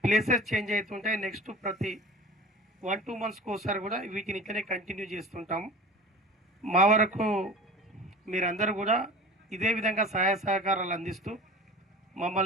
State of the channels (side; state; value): both; normal; correlation 0.38